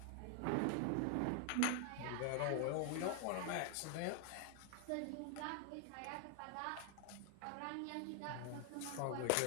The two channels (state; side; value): different; both; correlation 0.00